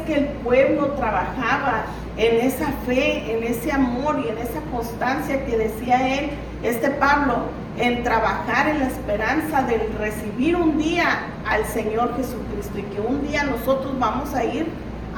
que el pueblo trabajaba en esa fe, en ese amor y en esa constancia que decía él, Pablo, en trabajar en la esperanza de recibir un día al Señor Jesucristo y que un día nosotros vamos a ir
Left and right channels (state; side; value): identical; both; correlation 1.00